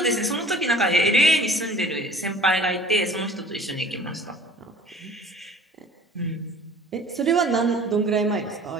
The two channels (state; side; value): normal; both; correlation 0.48